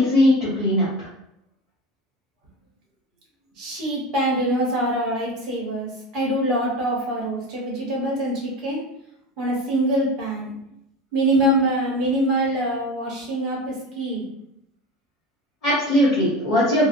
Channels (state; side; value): normal; both; correlation 0.30